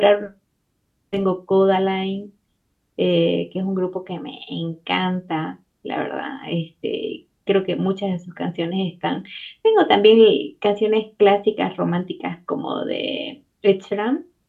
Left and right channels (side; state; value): both; identical; correlation 1.00